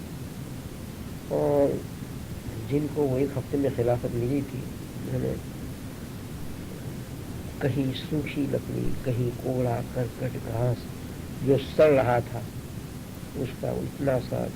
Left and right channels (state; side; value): identical; both; correlation 1.00